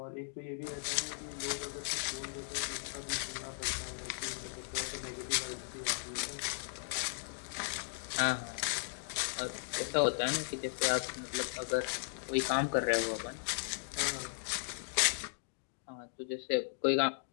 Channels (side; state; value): right; silent; digital silence